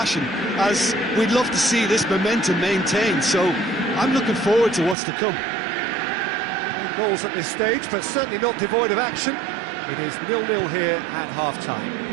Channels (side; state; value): left; drops out; at 5.0 s